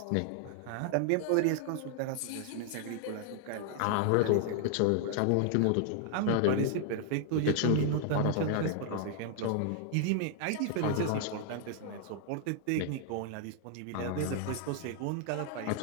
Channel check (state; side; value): different; both; correlation 0.00